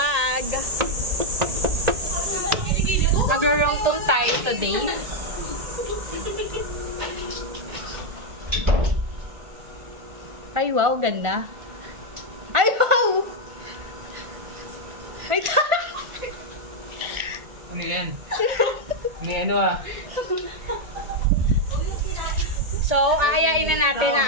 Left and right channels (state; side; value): late; left; 1.4 ms